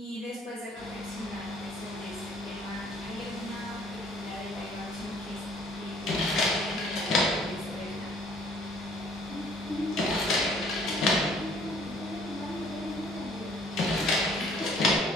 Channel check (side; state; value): both; normal; correlation 0.58